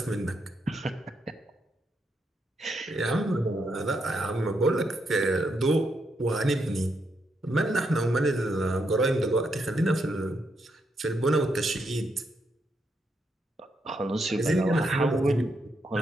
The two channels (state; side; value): normal; both; correlation 0.80